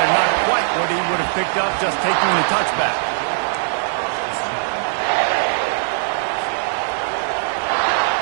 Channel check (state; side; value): silent; left; digital silence